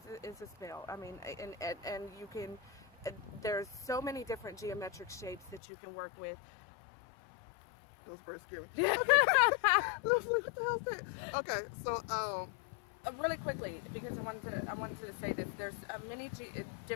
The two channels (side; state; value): right; drops out; at 5.6 s